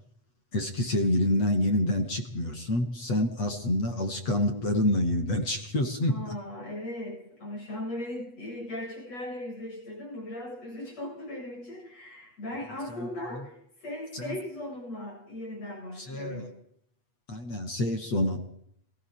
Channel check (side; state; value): right; late; 8.3 ms